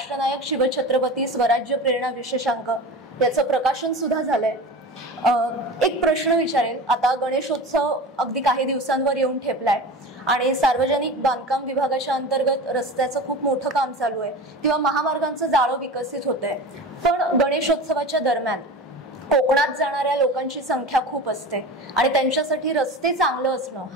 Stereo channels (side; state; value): both; normal; correlation 0.31